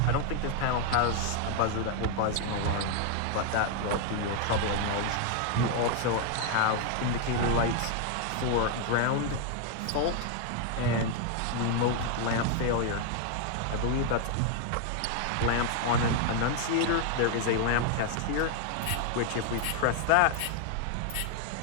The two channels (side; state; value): both; different; correlation 0.00